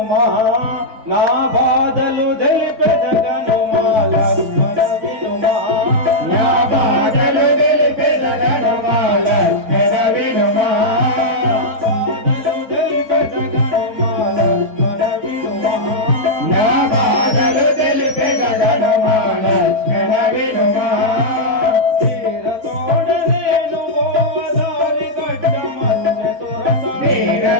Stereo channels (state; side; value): late; left; 4.6 ms